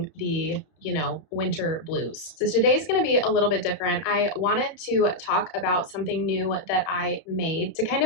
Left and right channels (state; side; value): late; right; 31 ms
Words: the winter blues. So today's going to be a little bit different. I wanted to talk about something new that I made to kind